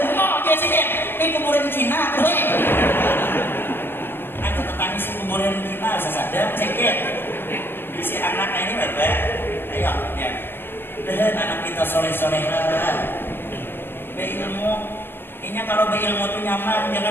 dia sini ini kuburan Cina tuh aku tetanggi si kuburan Cina sesadar cekit si anak ini bapak ayo ya dan anak kita soleh-solehan berilmu. Ini kalau berilmu itu nyaman,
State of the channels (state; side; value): late; right; 0.10 ms